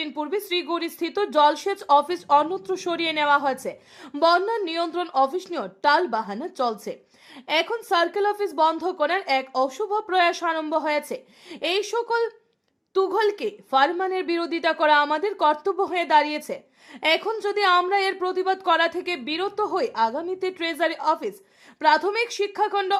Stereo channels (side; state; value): both; identical; correlation 1.00